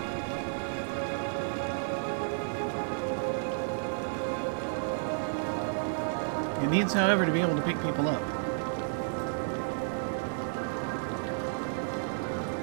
It needs, however, to be able to pick people up.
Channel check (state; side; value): silent; left; digital silence